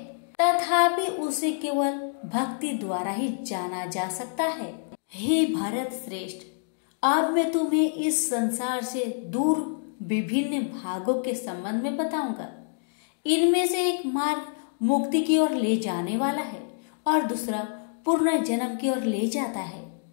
तथापि उसे केवल भक्ति द्वारा ही जाना जा सकता है। हे भारत श्रेष्ठ, अब मैं तुम्हें इस संसार से दूर विभिन्न भागों के संबंध में बताऊंगा। इनमें से एक मार्ग मुक्ति की ओर ले जाने वाला है और दूसरा पूर्ण जन्म की ओर ले जाता है।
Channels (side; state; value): right; silent; digital silence